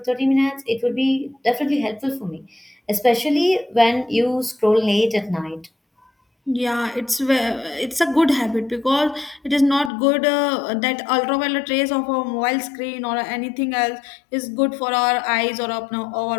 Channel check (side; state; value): right; drops out; at 9.9 s